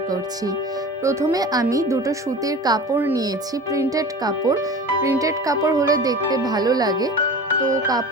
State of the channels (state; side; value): normal; both; correlation 0.36